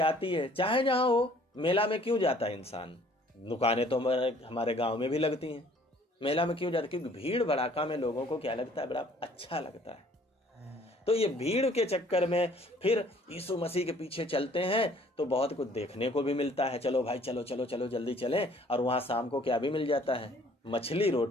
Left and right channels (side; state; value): both; normal; correlation 0.57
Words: आती है, चाहे जहां हो। मेला में क्यों जाता है इंसान? दुकानें तो हमारे गांव में भी लगती हैं, मेला में क्यों जाता है? क्योंकि भीड़ भड़ाका में लोगों को क्या लगता है, बड़ा अच्छा लगता है। तो ये भीड़ के चक्कर में फिर यीशु मसीह के पीछे चलते हैं तो बहुत कुछ देखने को भी मिलता है। चलो भाई चलो चलो चलो जल्दी चलें, और वहां शाम को क्या भी मिल जाता है, मछली